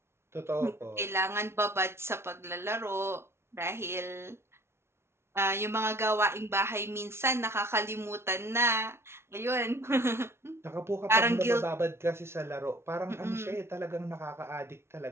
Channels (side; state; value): left; late; 0.12 ms